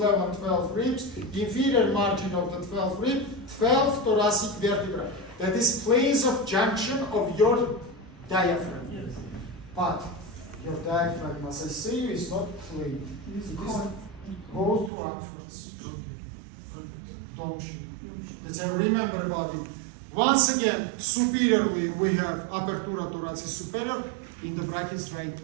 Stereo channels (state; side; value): drops out; left; at 14.9 s